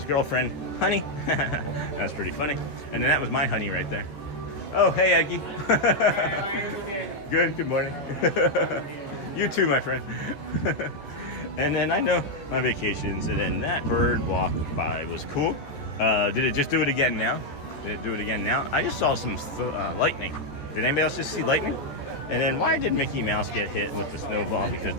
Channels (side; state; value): right; late; 14 ms